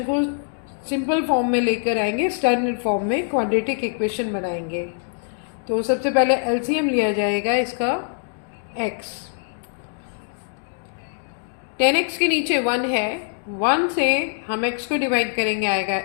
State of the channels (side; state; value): right; silent; digital silence